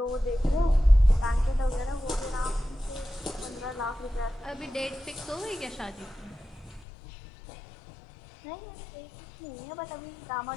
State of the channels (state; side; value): drops out; right; at 6.9 s